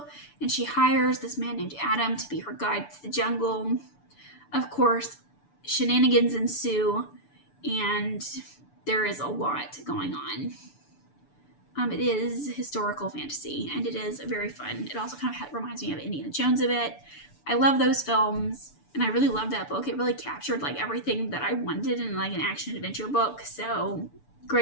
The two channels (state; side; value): late; right; 6.9 ms